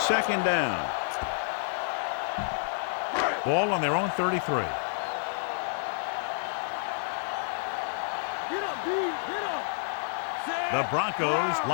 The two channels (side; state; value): right; silent; digital silence